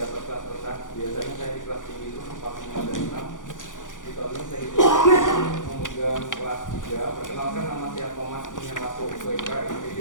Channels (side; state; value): right; late; 0.87 ms